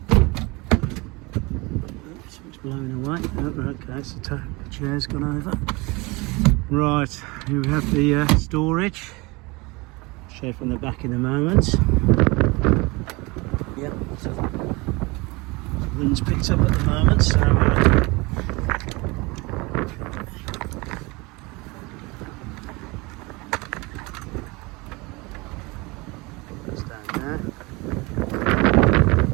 Oops, it's blowing away. Oh, okay, so the chair's gone over. Right, here we have the storage. I'll show you from the back in a moment. Yep, so the wind's picked up at the moment, so that's down there.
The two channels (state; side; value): quieter; left; 25.1 dB